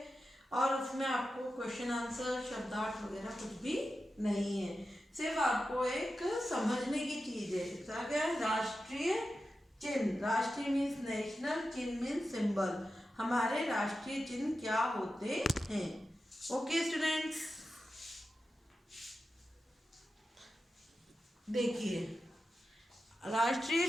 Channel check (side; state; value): both; normal; correlation 0.92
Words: और उसमें आपको क्वेश्चन आंसर शब्दार्थ वगैरह कुछ भी नहीं है. सिर्फ आपको एक समझने की चीज है. इसका क्या है? राष्ट्रीय चिन्ह. राष्ट्रीय मीन्स नेशनल, चिन्ह मीन्स सिंबल. हमारे राष्ट्रीय चिन्ह क्या होते हैं? ओके स्टूडेंट्स, देखिए राष्ट्रीय